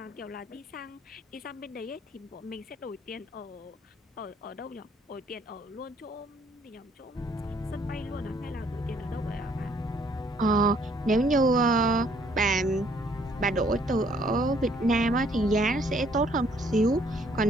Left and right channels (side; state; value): both; normal; correlation 0.64